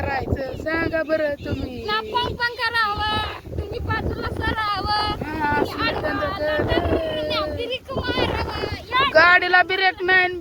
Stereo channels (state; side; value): identical; both; correlation 1.00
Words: सांगा बरं तुम्ही. गाडीला ब्रेक नाही,